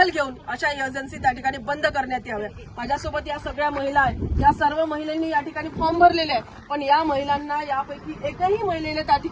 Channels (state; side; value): identical; both; correlation 1.00